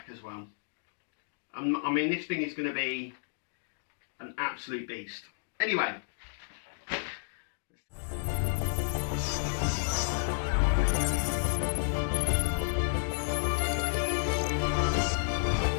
as well. I mean, this thing is going to be an absolute beast. Anyway.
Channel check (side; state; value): right; silent; digital silence